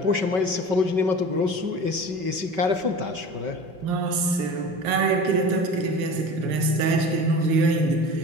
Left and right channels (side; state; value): left; late; 5.3 ms